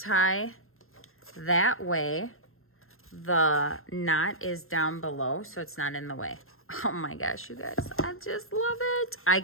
That way, the knot is down below, so it's not in the way. Oh my gosh, you guys, I just love it. I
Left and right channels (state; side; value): late; right; 0.61 ms